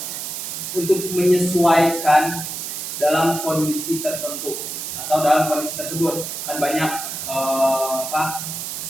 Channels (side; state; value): right; noise; hiss, 6 dB below the sound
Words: untuk menyesuaikan dalam kondisi tertentu atau dalam kondisi tersebut? Kan banyak